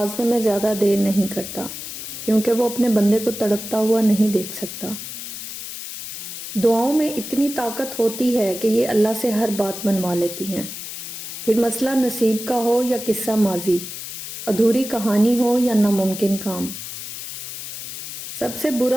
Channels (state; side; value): noise; left; hiss, 9 dB below the sound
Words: میں زیادہ دیر نہیں کرتا، کیونکہ وہ اپنے بندے کو تڑپتا ہوا نہیں دیکھ سکتا۔ دعاؤں میں اتنی طاقت ہوتی ہے کہ یہ اللہ سے ہر بات منوا لیتی ہیں، پھر مسئلہ نصیب کا ہو یا قصہ ماضی، ادھوری کہانی ہو یا ناممکن کام۔ سب سے